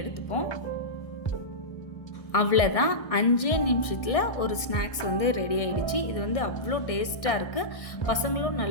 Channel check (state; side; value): late; right; 1.6 ms